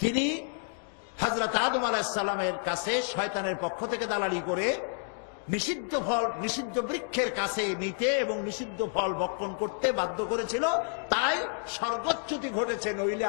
তিনি হযরত আদম আলাইহিস সালামের কাছে শয়তানের পক্ষ থেকে দালালি করে নিষিদ্ধ ফল, নিষিদ্ধ বৃক্ষের কাছে নিতে এবং নিষিদ্ধ ফল ভক্ষণ করতে বাধ্য করেছিল। তাই স্বর্গচ্যুতি ঘটেছে, নইলে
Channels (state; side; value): silent; right; 58 dB below the other